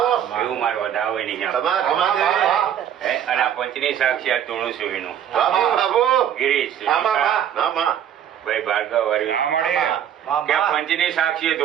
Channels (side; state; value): left; quieter; 9.7 dB